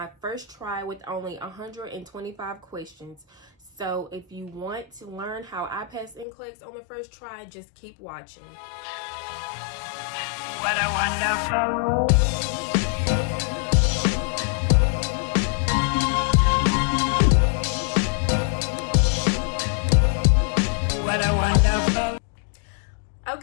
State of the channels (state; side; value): drops out; right; at 6.2 s